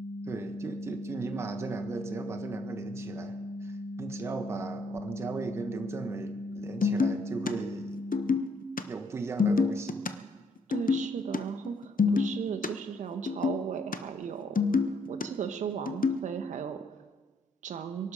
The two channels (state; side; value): normal; both; correlation 0.69